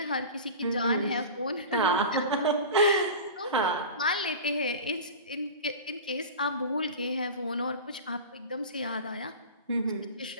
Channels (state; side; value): inverted; both; correlation -0.32